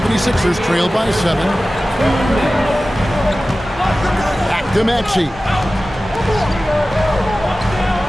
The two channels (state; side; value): normal; both; correlation 0.96